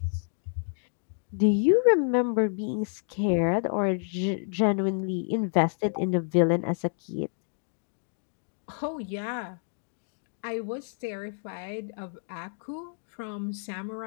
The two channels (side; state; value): right; silent; digital silence